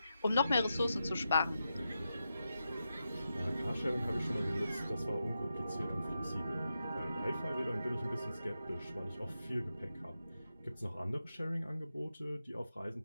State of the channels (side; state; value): both; inverted; correlation -0.88